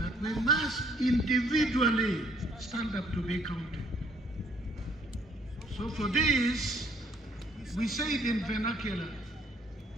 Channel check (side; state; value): both; normal; correlation 0.64